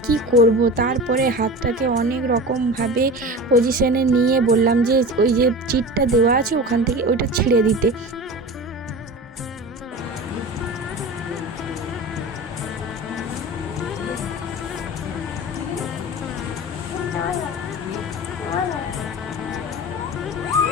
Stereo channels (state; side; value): normal; both; correlation 0.32